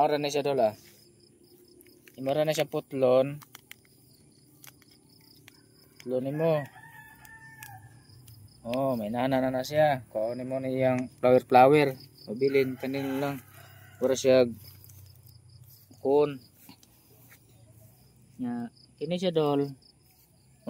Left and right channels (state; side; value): identical; both; correlation 1.00